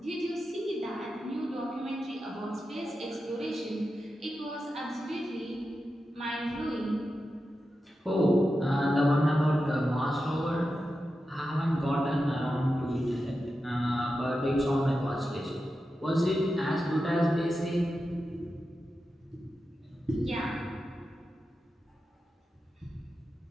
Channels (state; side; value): normal; both; correlation 0.91